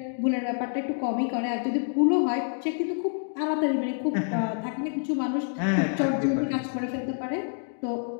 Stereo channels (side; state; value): right; silent; 60 dB below the other